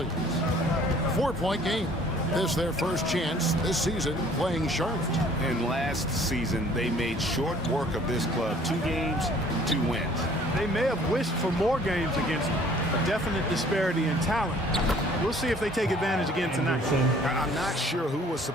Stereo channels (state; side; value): normal; both; correlation 0.55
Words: 4-point game. This their first chance this season playing Charlotte. And last season, they made short work of this club. 2 games, 2 wins. They may have wished for more games against them. A definite disparity in talent. We'll see if they take advantage again tonight. I'm not sure who was